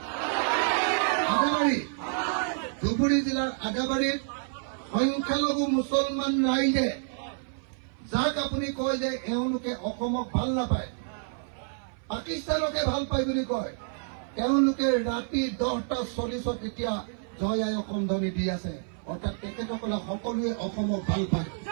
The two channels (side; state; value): left; silent; 56 dB below the other